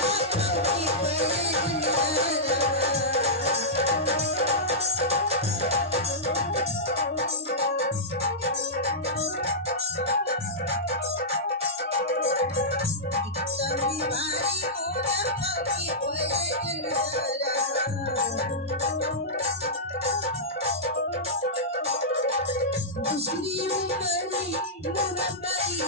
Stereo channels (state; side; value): normal; both; correlation -0.14